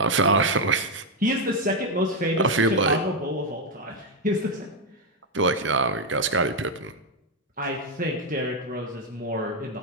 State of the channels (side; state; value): both; normal; correlation 0.03